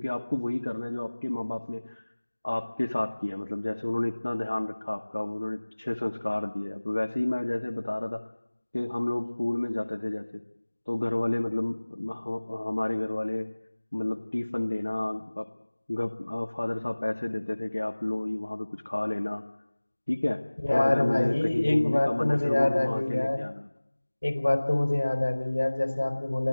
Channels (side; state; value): both; inverted; correlation -1.00